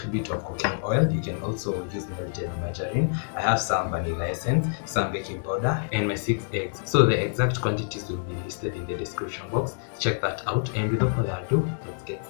bit of cooking oil. You can also use melted margarine. I have some vanilla essence, some baking powder, and my 6 eggs. So the exact quantities will be listed in the description box. Check that out, and without further ado, let's get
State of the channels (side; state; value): right; silent; digital silence